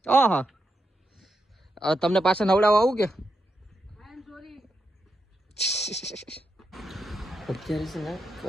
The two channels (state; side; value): normal; both; correlation 0.85